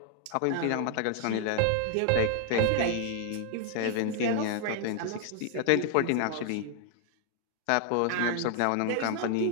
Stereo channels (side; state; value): both; different; correlation 0.00